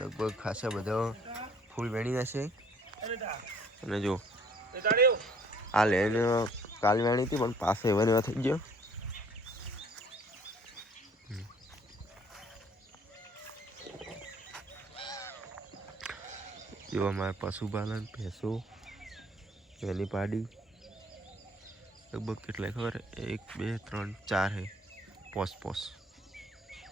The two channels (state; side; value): normal; both; correlation 0.57